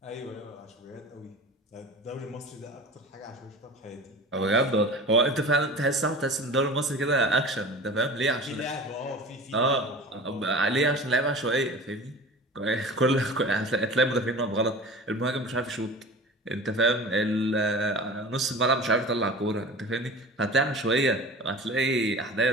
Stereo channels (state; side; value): normal; both; correlation 0.37